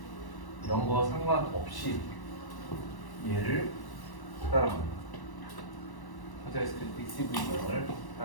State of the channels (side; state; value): right; late; 1.1 ms